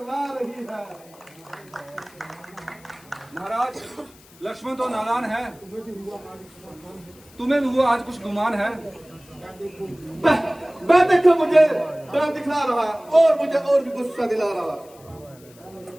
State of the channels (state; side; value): noise; left; hiss, 25 dB below the sound